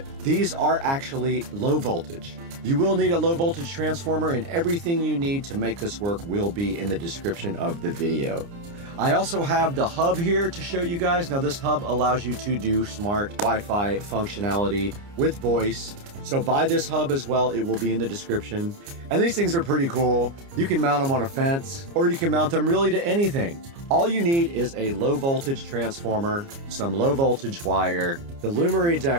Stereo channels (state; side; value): late; left; 29 ms